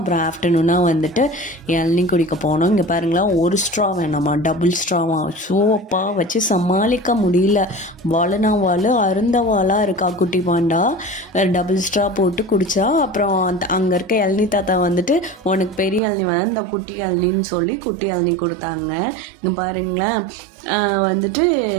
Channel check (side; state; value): left; drops out; at 16.0 s